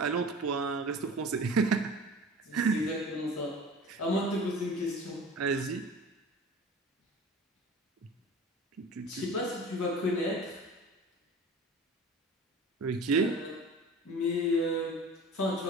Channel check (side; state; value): both; normal; correlation 0.39